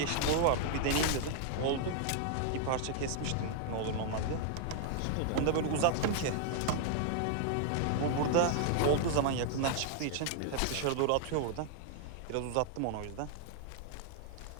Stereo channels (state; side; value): different; both; correlation 0.00